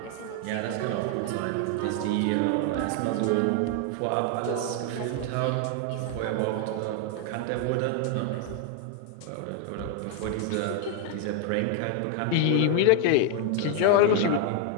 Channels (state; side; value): different; both; correlation 0.00